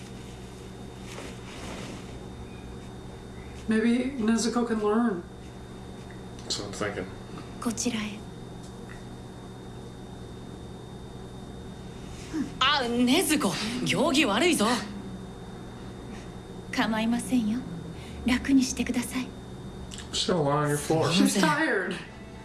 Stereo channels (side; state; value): both; identical; correlation 1.00